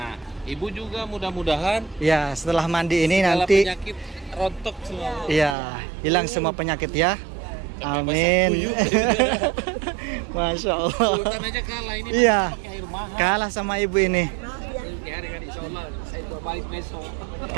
ibu juga mudah-mudahan Ya, setelah mandi ini segala nanti penyakit rontok semua. iya, hilang semua penyakit ya. Amin. Masya Allah. Sultan aja kalah ini. Iya. Pakai air mahal. Kalah sama ibu ini. Hari-hari insya Allah saya mau balik besok.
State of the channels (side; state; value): left; drops out; at 5.6 s